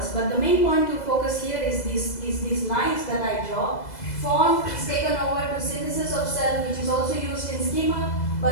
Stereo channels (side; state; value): right; late; 2.0 ms